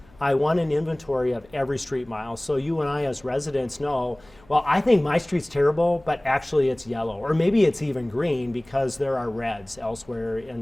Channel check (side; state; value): left; noise; hum, 28 dB below the sound